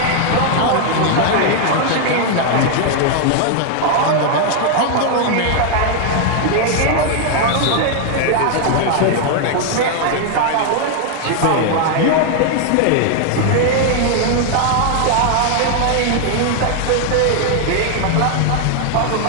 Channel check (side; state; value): both; different; correlation 0.00